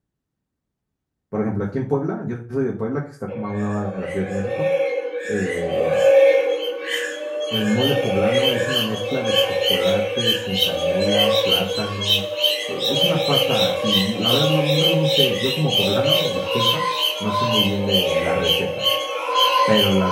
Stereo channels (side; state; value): both; identical; correlation 1.00